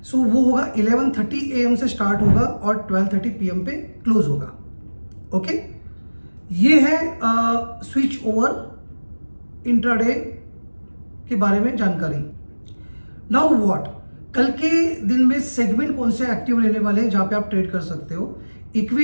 वो होगा 11:30 AM से स्टार्ट होगा और 12:30 PM पे क्लोज होगा। ओके, ये है स्विच ओवर इंट्राडे के बारे में जानकारी। नाउ व्हाट, कल के दिन में सेगमेंट कौन से एक्टिव रहने वाले हैं जहां पे आप ट्रेड कर सकते हो।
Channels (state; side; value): inverted; both; correlation -1.00